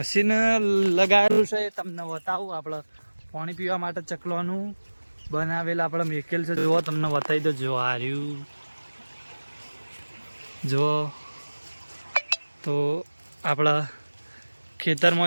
લગાવેલું છે. તમને બતાવું, આપણે પાણી પીવા માટે ચકલોનું બનાવેલ આપણે મેકેલ છે. જુઓ, તમને બતાવી દો. જો હાર્યું જો, તો આપણા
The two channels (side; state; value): both; inverted; correlation -1.00